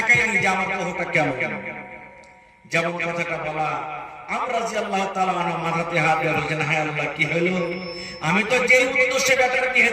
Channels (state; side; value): identical; both; correlation 1.00